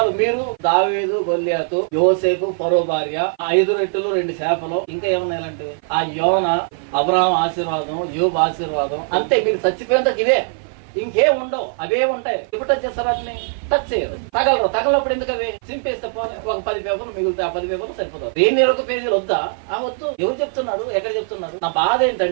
మీరు దావీదు, గొల్లియాతు, యోసేపు, ఫరో భార్య, 5 రొట్టెలు 2 చేపలు, ఇంకా ఏమన్నాయంటే ఆ యోన, అబ్రహాం ఆశీర్వాదం, యోబు ఆశీర్వాదం, అంతే. మీరు చచ్చిపోయేంత ఇవే, ఇంకేం ఉండవు. అవే ఉంటాయి. ఇప్పుడు టచ్ చేస్తారు, వాటిని టచ్ చేయరు. తగలప్పుడు ఎందుకు అవి చింపేస్తే ఒక 10 పేపర్లు మిగులుతాయి. ఆ 10 పేపర్లు సరిపోతారు. 1 పేజీలు వద్దా? వద్దు. ఎవరు చెప్తున్నారు? ఎక్కడ చెప్తున్నారు? నా బాధ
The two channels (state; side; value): silent; left; 55 dB below the other